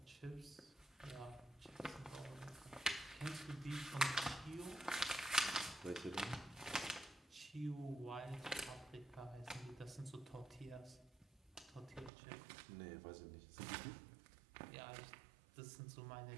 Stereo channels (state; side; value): drops out; left; at 12.1 s